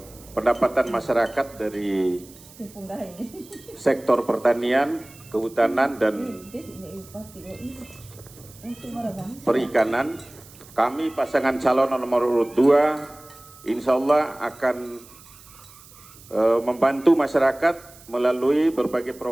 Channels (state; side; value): noise; right; hiss, 22 dB below the sound